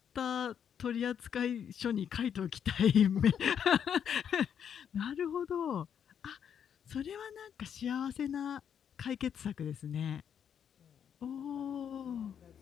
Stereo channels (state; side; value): quieter; right; 8.3 dB